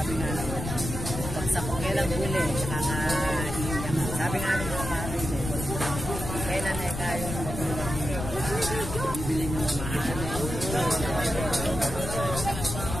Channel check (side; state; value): left; noise; rumble, 6 dB below the sound